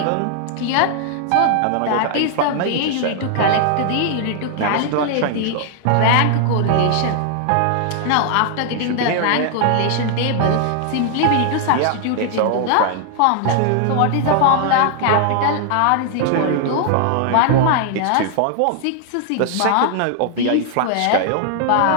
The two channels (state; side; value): different; both; correlation 0.00